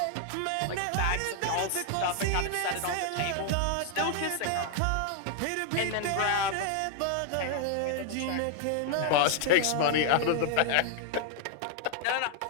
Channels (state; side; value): different; both; correlation 0.00